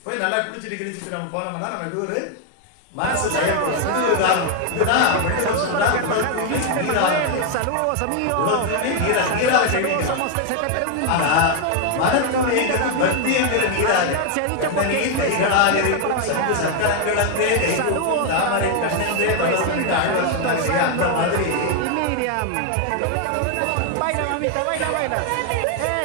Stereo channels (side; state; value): both; different; correlation 0.00